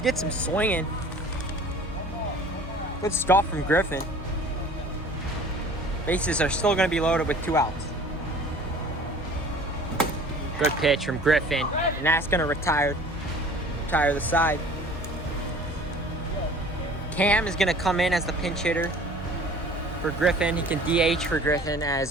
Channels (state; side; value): normal; both; correlation 0.47